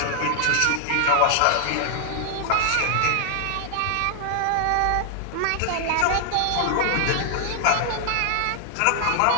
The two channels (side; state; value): both; different; correlation 0.00